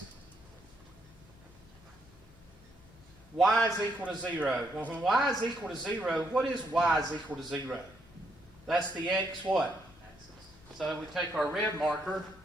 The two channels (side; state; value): both; normal; correlation 0.75